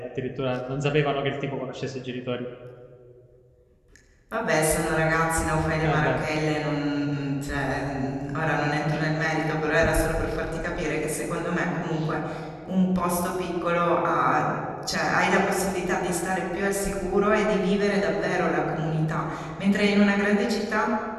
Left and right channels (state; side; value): identical; both; correlation 1.00